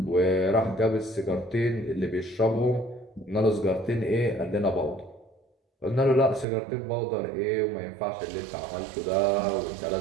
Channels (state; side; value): drops out; left; at 6.5 s